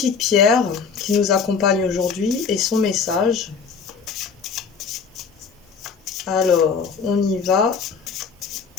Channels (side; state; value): right; quieter; 5.7 dB